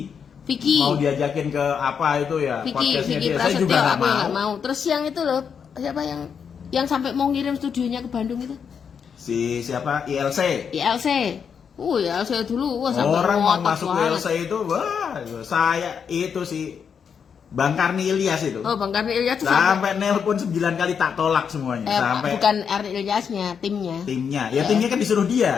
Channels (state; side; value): quieter; right; 6.9 dB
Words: Vicky. Mau diajakin ke apa itu ya? Vicky Podcastnya dia. Saya Prasetyo, juga nggak aku yang mau. nggak mau. Terus yang itu loh, siapa yang sampai mau ngirim studionya ke Bandung itu? Si siapa? ILC. ILC. ILC dulu, sampai Orang mau ngotot masuk banget. ILC itu, wah, saya itu si Bang Karni Ilyas itu. Oh, Bang Karni Ilyas tuh sampai Sampai nelpon 9 kali tak tolak semuanya. Sampai bukan Karni Ilyasnya, timnya. timnya. Ya timnya kan disuruh